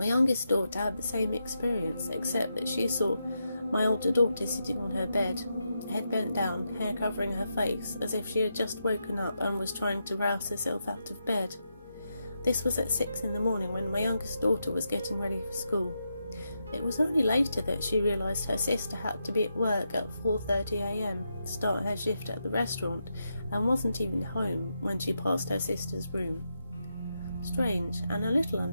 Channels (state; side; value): inverted; both; correlation -0.85